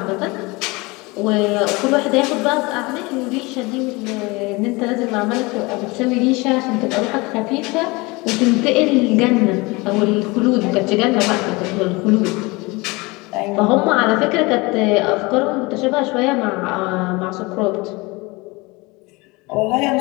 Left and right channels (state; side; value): quieter; right; 24.6 dB